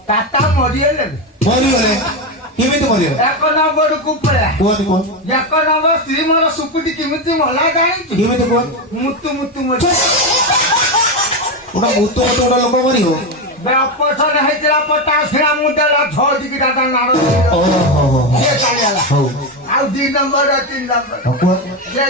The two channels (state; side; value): normal; both; correlation 0.12